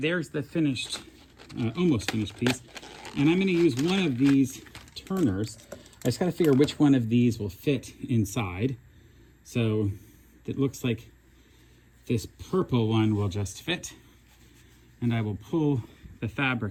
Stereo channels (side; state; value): both; identical; correlation 1.00